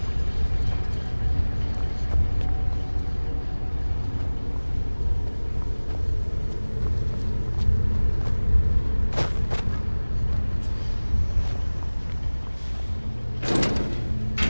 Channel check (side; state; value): both; inverted; correlation -1.00